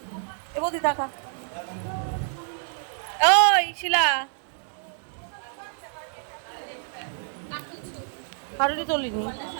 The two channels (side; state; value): left; silent; 60 dB below the other